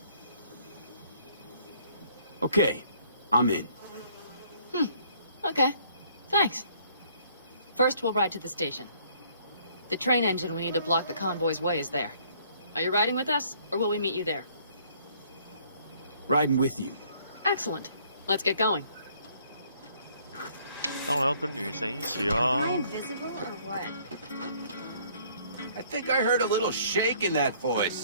Okay, I'm in. Okay. Thanks. First, we'll ride to the station. The train engine we need to block the convoy's way is there. Are you riding with us, or will we meet you there? Riding with you. Excellent. Let's get going. 当然要跟女神一起 Am 啊 I invisible or what? I think I heard a little shake in that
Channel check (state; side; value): inverted; both; correlation -0.61